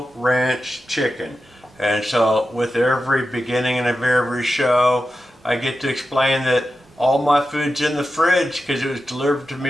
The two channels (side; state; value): both; normal; correlation 0.91